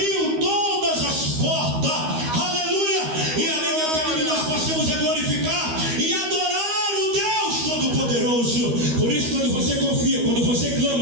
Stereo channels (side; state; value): left; late; 13 ms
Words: todas as portas, aleluia, e ali, meu querido, nós passamos a glorificar e adorar o Deus Todo-Poderoso. Por isso, quando você confia, quando você